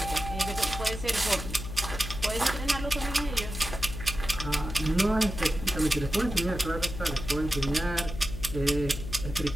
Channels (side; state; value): left; noise; hum, 7 dB below the sound